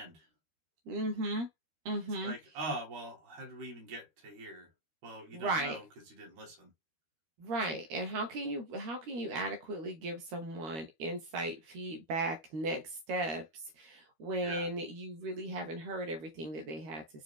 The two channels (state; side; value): late; left; 13 ms